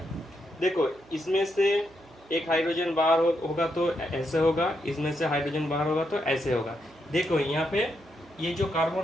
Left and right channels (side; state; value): right; noise; hum, 26 dB below the sound